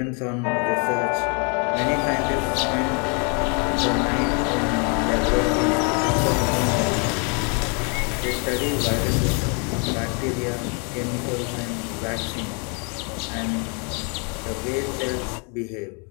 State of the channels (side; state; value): right; quieter; 35.7 dB